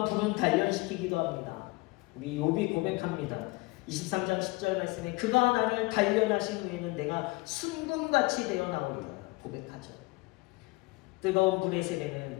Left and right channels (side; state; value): right; quieter; 24.1 dB